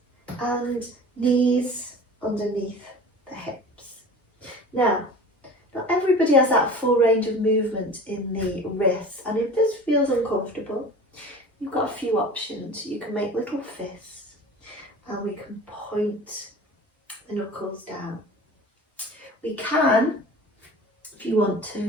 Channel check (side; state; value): both; normal; correlation 0.39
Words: And knees underneath the hips. Now, not everybody has that full range of movement in the wrists, and if this feels uncomfortable, you've got a few options. You can make little fists, and we can point the knuckles down. We can, if you want